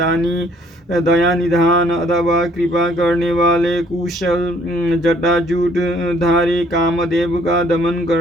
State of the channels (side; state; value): both; normal; correlation 0.62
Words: दया निधान अथवा कृपा करने वाले, कुशल जटाजूट धारी, कामदेव का दमन